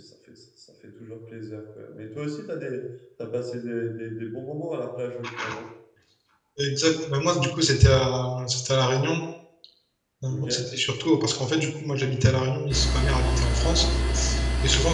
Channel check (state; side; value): identical; both; correlation 1.00